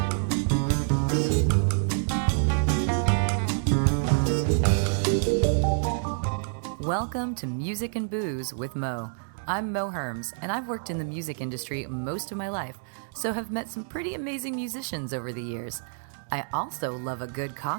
Welcome to Music and Booze with Mo. I'm Mo Herms, and I've worked in the music industry most of my life, so have met some pretty amazing musicians over the years. I also love a good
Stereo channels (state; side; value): silent; left; 60 dB below the other